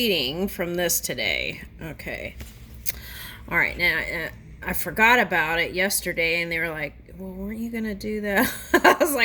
from this today. Okay. All right, now I forgot about it yesterday, and they were like, well, weren't you going to do that? I was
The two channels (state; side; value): identical; both; correlation 1.00